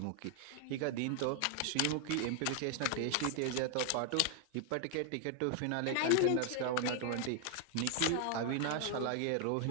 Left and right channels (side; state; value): both; different; correlation 0.00